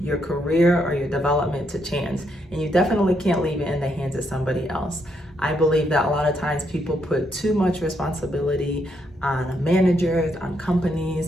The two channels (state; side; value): normal; both; correlation 0.77